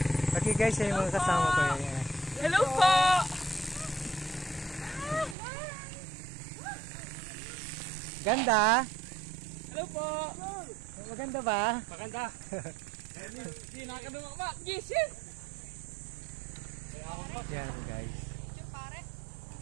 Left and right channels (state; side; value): drops out; left; at 5.4 s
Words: Okay guys, yan yung mga kasama ko. Yan. Hello po! Ganda? Hello po! Maganda ba? Maganda! Hindi nakakadunga ba? Gising! Yan guys.